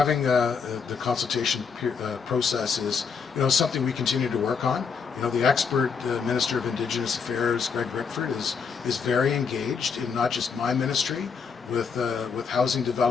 the consultation process is, something we continue to work on. The expert Minister of Indigenous Affairs, Greg Rickford, is very engaged in not just my ministry with housing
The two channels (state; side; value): quieter; right; 5.8 dB